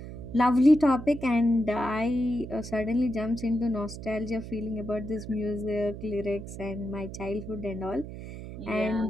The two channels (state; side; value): noise; right; hum, 11 dB below the sound